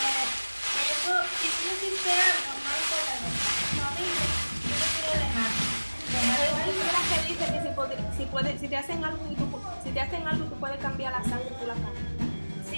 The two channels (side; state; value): both; inverted; correlation -1.00